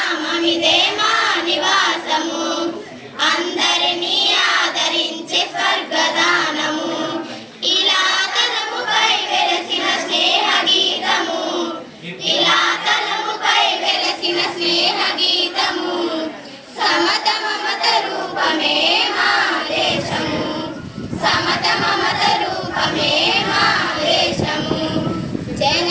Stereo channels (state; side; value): identical; both; correlation 1.00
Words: మా నివాసము అందరినీ ఆదరించే స్వర్గదానము ఇలా తలముపై వెలసిన స్నేహ గీతము ఇలా తలముపై వెలసిన స్నేహ గీతము సమత మమత రూపమే మా దేశము సమత మమత రూపమే మా దేశము